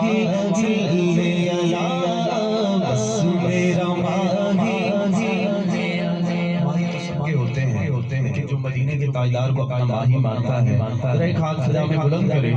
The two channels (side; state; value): both; identical; correlation 1.00